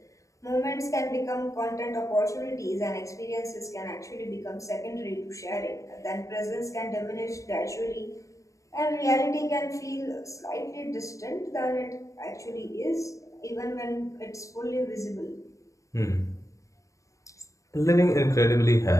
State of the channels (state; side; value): late; right; 0.15 ms